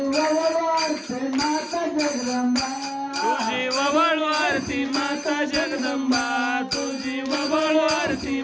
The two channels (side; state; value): both; identical; correlation 1.00